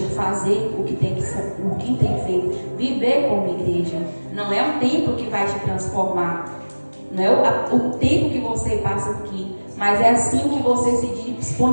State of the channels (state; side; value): inverted; both; correlation -1.00